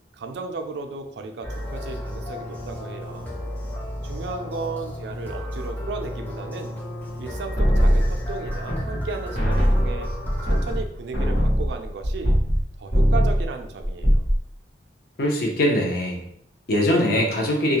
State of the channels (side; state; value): both; normal; correlation 0.79